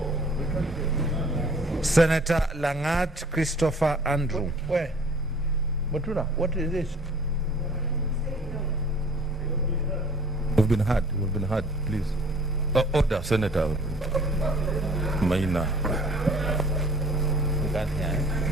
Senator Langat Christopher Andrew. Where? Mutula, what is this? We've been heard, please. Order, Senator Maina.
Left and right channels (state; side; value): normal; both; correlation 0.52